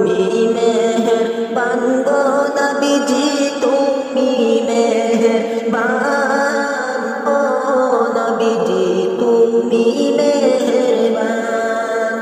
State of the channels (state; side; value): identical; both; correlation 1.00